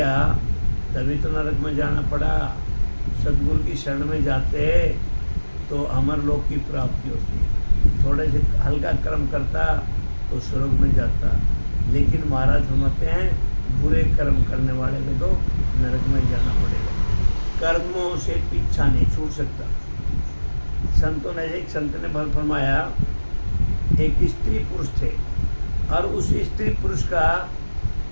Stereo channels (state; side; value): inverted; both; correlation -1.00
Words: तभी तो नरक में जाना पड़ा। सदगुरु की शरण में जाते तो अमर लोक की प्राप्ति होती। थोड़े से हल्का कर्म करता तो स्वर्ग में जाता। लेकिन महाराज फरमाते हैं बुरे कर्म करने वाले को तो नरक में जाना पड़ेगा। कर्मों से पीछा नहीं छूट सकता। संतों ने, एक संत ने फरमाया, एक स्त्री पुरुष थे और उस स्त्री पुरुष का,